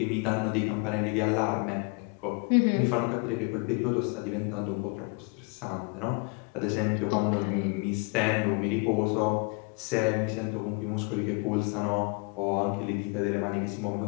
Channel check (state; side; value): quieter; right; 32.6 dB